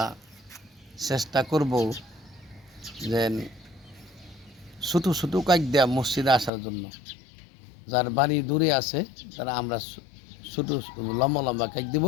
চেষ্টা করব যে ছোটো ছোটো কাজ দেওয়া মসজিদে আসার জন্য। যার বাড়ি দূরে আছে তারা আমরা ছোটো লম্বা লম্বা কাজ দেব,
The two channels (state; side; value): drops out; right; at 6.5 s